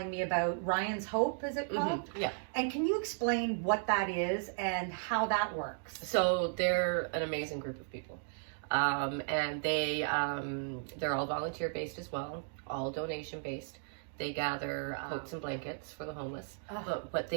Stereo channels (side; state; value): left; silent; digital silence